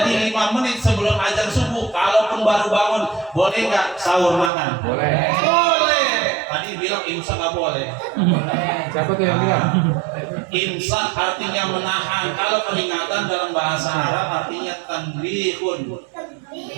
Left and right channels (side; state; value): left; drops out; at 4.5 s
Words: 5 menit sebelum azan subuh, kalaupun baru bangun, boleh nggak sahur makan? Boleh. Boleh. Tadi bilang imsak nggak boleh. Siapa tuh yang bilang? Imsak artinya menahan. Kalau peringatan dalam bahasa Arab artinya tanbihun.